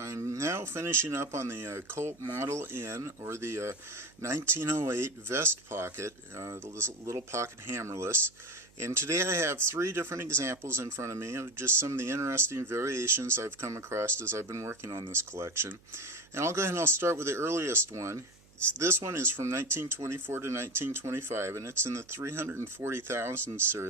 now finishing up on the Colt Model N, or the 1908 vest pocket, the little pocket hammerless. And today I have three different examples in front of me of just some of the interesting variations I've come across as I've been working on this collection. And I'll go ahead and I'll start with the earliest one. This one is from 1924 to 1925, and it's in the 340,000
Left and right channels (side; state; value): right; noise; hum, 28 dB below the sound